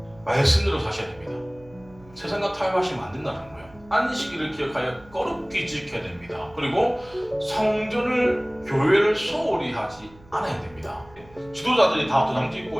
말씀대로 사셔야 됩니다. 세상과 타협하시면 안 된다는 거예요. 안식일을 기억하여 거룩히 지켜야 됩니다. 그리고 성전을, 교회를 소홀히 하지 않아야 됩니다. 지도자들이 다 도장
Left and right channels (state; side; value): noise; right; hum, 24 dB below the sound